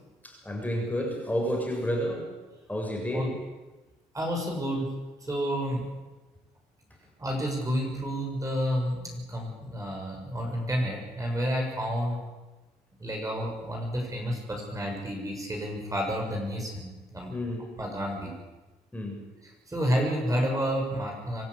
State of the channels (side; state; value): both; normal; correlation 0.78